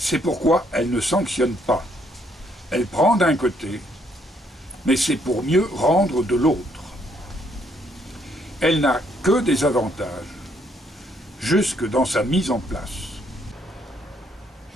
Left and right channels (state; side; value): normal; both; correlation 0.70